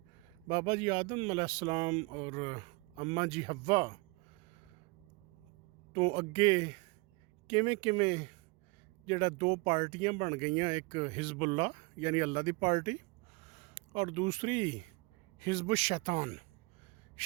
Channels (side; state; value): left; quieter; 27.4 dB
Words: ਬਾਬਾ ਜੀ ਆਦਮ ਅਲੈਹਿਸਲਾਮ ਔਰ ਅੰਮਾ ਜੀ ਹੱਵਾ ਤੋਂ ਅੱਗੇ ਕਿਵੇਂ ਕਿਵੇਂ ਜਿਹੜਾ ਦੋ ਪਾਰਟੀਆਂ ਬਣ ਗਈਆਂ, ਇੱਕ ਹਿਜ਼ਬੁੱਲਾ ਯਾਨੀ ਅੱਲਾ ਦੀ ਪਾਰਟੀ ਔਰ ਦੂਸਰੀ ਹਿਜ਼ਬੁ